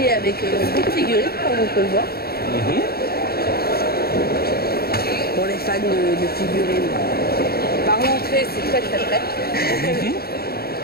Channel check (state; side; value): late; right; 0.45 ms